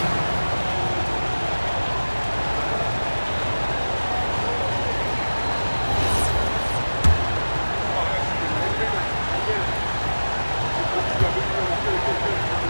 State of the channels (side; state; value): both; inverted; correlation -1.00